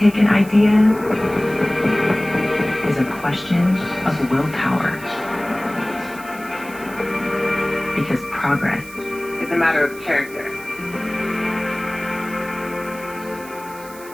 take an idea is a question of willpower. Because progress It's a matter of character.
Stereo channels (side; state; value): right; noise; hiss, 19 dB below the sound